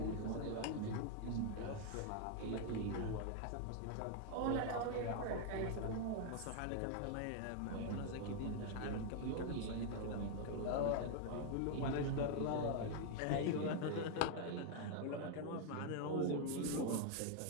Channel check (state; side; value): different; both; correlation 0.00